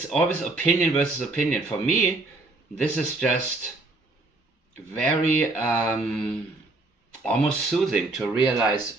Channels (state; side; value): quieter; left; 3.1 dB